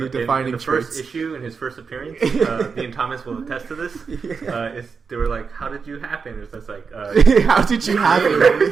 in defining the traits. first issue, in his first appearance, me and Thomas will attest to this. They were like, "How did you happen?" It's just like, How did you have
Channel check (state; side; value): quieter; left; 5.4 dB